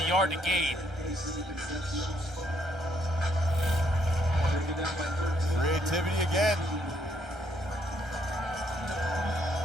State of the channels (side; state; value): both; normal; correlation 0.71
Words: yard to gain. Creativity again.